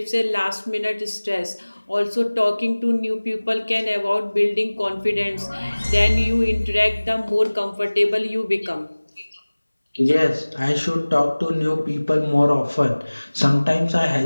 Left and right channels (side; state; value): both; inverted; correlation -1.00